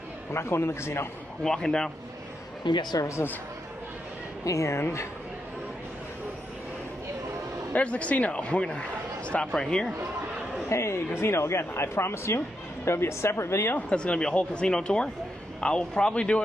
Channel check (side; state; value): both; normal; correlation 0.83